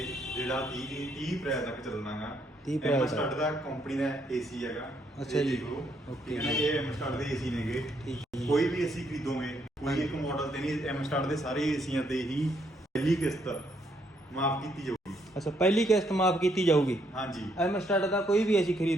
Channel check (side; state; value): both; normal; correlation 0.73